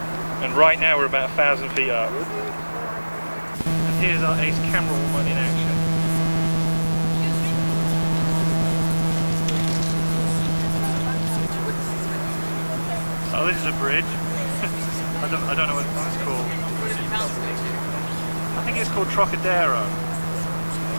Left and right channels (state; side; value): inverted; both; correlation -1.00